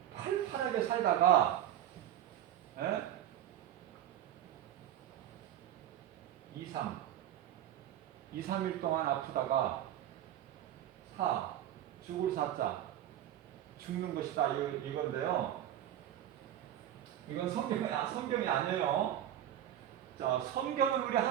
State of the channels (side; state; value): left; quieter; 11.6 dB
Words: 살다가 2, 3일 동안 아프다가 죽을 사자 죽는 것이다 이건데요. 이건 성경이 아니에요. 자, 성경은 우리